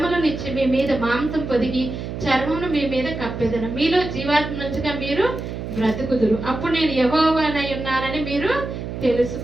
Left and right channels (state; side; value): noise; right; hum, 7 dB below the sound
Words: మీ మీద మాంసం పొదిగి చర్మమును మీ మీద కప్పేదను. మీలో జీవాత్మ నుంచిగా మీరు బ్రతుకుదురు. అప్పుడు నేను యెహోవానై ఉన్నానని మీరు